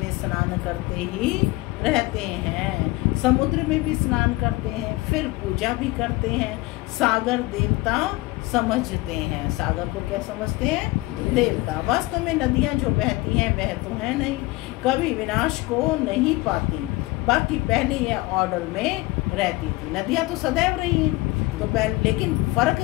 स्नान करते ही रहते हैं, समुद्र में भी स्नान करते हैं, फिर पूजा भी करते हैं। सागर देवता समझते हैं। सागर को क्या समझते हैं? देवता। वास्तव में नदियाँ जो बहती हैं वह तो है नहीं, कभी विनाश को नहीं पाती। बाकी पहले यह ऑर्डर में रहती थी। नदियाँ तो सदैव रही हैं, तो पहले, लेकिन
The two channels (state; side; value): quieter; right; 20.9 dB